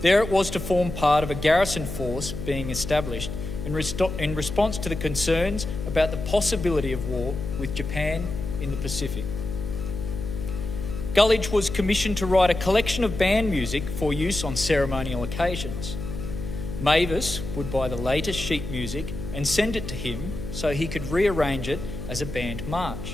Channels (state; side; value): noise; left; hum, 7 dB below the sound